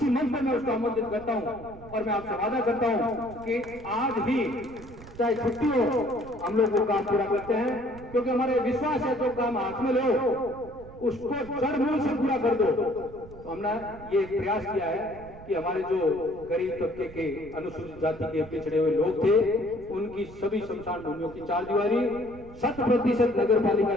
मंच पर मैं उसको आमंत्रित करता हूँ। और मैं आपसे वादा करता हूँ कि आज ही चाहे छुट्टी हो हम लोग वो काम पूरा करते हैं, क्योंकि हमारे विश्वास है जो काम हाथ में लो उसको जड़ मूल से पूरा कर दो। तो हमने ये प्रयास किया है कि हमारे जो गरीब तबके के अनुसूचित जाति के पिछड़े हुए लोग थे उनकी सभी शमशान भूमियों की 4 दीवारी 100% नगर पालिका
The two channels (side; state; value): right; noise; rumble, 18 dB below the sound